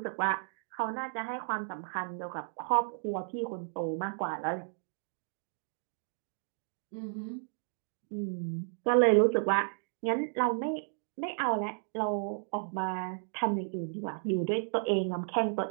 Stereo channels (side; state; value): left; silent; digital silence